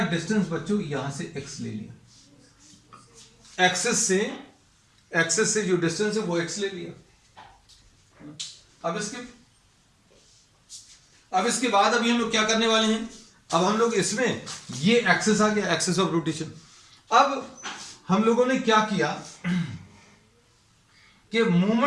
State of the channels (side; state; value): both; identical; correlation 1.00